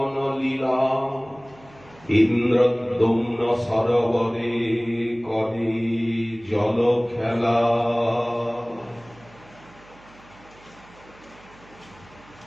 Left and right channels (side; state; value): right; noise; hum, 25 dB below the sound